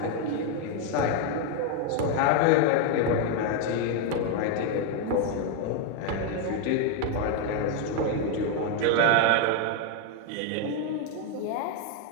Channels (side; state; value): both; different; correlation 0.01